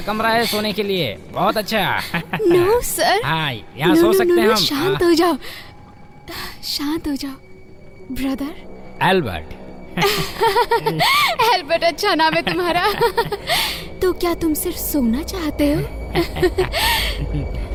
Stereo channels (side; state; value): both; identical; correlation 1.00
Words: कमरा है सोने के लिए, बहुत अच्छा। No sir. हाँ यहाँ सो सकते हैं हम। शांत हो जाओ, शांत हो जाओ ब्रदर। एल्बर्ट। एल्बर्ट अच्छा नाम है तुम्हारा। तो क्या तुम सिर्फ सोना चाहते हो?